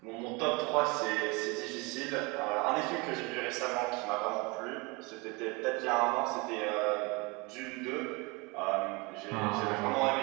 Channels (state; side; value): quieter; left; 27.3 dB